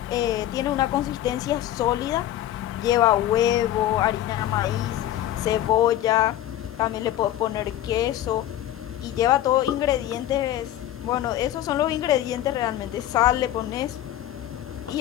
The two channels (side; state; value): right; quieter; 12.8 dB